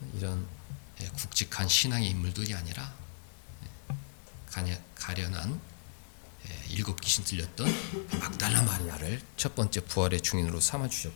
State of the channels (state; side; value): silent; right; digital silence